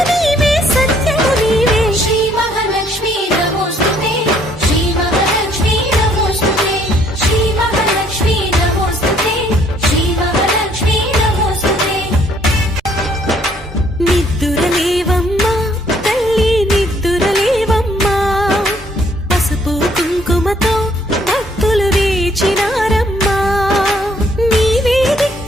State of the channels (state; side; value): normal; both; correlation 0.64